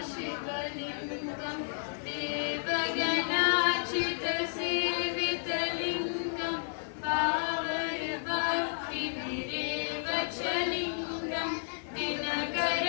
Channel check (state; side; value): silent; right; 56 dB below the other